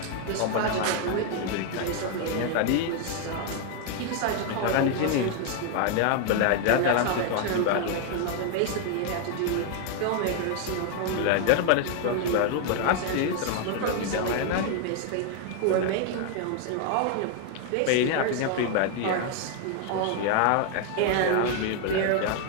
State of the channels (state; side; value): different; both; correlation 0.00